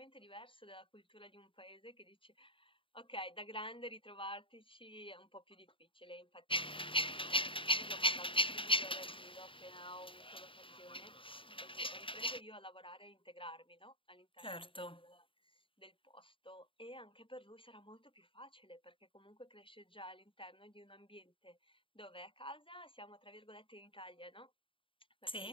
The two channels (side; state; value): right; late; 0.25 ms